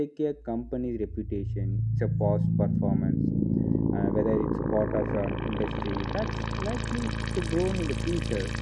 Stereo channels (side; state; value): both; identical; correlation 1.00